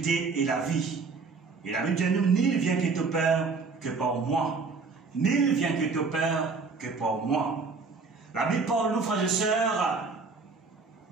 et la vie. Et la Bible dit à nous, nul vient que ton Père que par moi. Nul vient que ton Père que par moi. La Bible parle, nous, frères et sœurs,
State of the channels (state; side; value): quieter; left; 4.5 dB